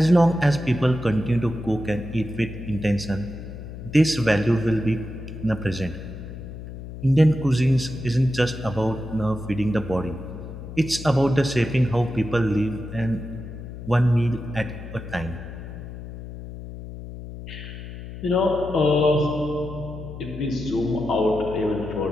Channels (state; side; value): noise; left; hum, 11 dB below the sound